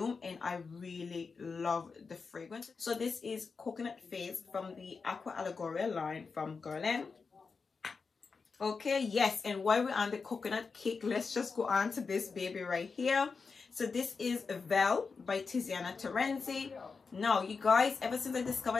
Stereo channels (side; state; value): right; quieter; 4.9 dB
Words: and I really love the fragrance. So this is Coconut Fizz from the Aqua Allegoria line from Guerlain. Okay, yes, and while we're on the coconut cake, let's just go on to this baby right here. So this is Vele by Tiziana Terenzi. Now, you guys, ever since I